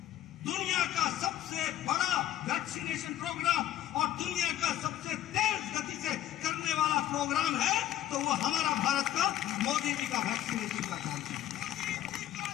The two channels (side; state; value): right; quieter; 12.7 dB